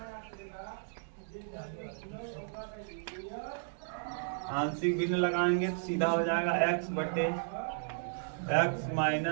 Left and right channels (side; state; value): left; silent; digital silence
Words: आंशिक भिन्न लगाएंगे तो सीधा हो जाएगा x बटे x